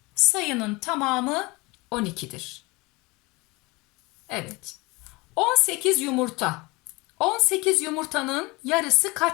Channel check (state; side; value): quieter; right; 24.4 dB